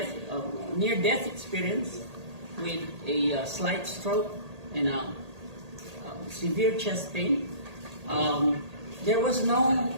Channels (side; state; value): left; late; 1.8 ms